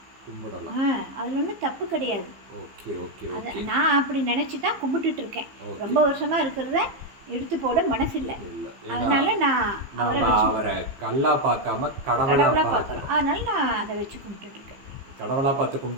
அதில் ஒன்றும் தப்பு கிடையாது. நான் அப்படி நினச்சி தான் கும்பிட்டுட்டு இருக்கேன். ரொம்ப வருஷமாக இருக்கிறத எடுத்து போட மனசு இல்லை. அதனால நான் அவரை கல்லா பார்க்காம கடவுளா பார்க்குறேன். அதனால நான் அதை வச்சு கும்பிட்டுட்டு இருக்கேன். கடவுளா பார்த்து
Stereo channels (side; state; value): left; late; 15 ms